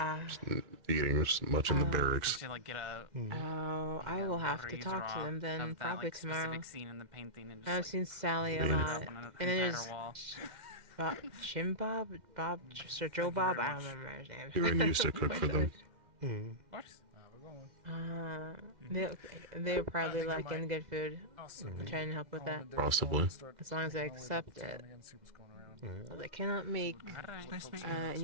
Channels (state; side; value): late; left; 2.1 ms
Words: as much in the barracks. Should like get a Oh, I will have to breeze talk to draw them then, of that, probably like, tomorrow. specific scene in the painting and just, I've like, seen Sally a put it lot. up on an And then entire there's wall. Jim Bob, Sir Joe Bob, I don't remember his name. Irene used to cook for them. Of course. They're probably lacking good food. I'm trying to help with that. Possibly. As long as I accept it. Well, I cannot make